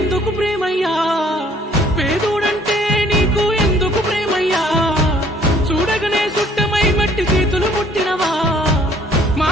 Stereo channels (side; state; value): both; normal; correlation 0.59